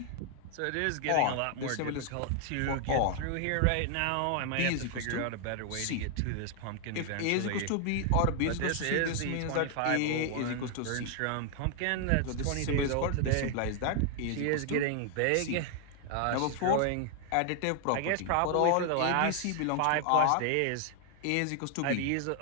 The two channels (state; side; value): different; both; correlation 0.00